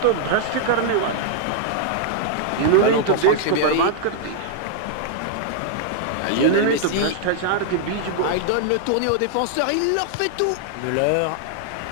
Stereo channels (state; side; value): different; both; correlation -0.01